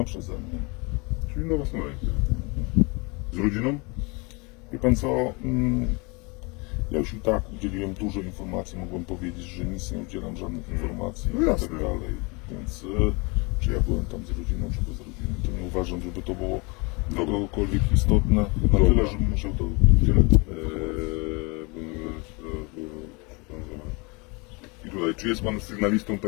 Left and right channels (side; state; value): right; quieter; 28.9 dB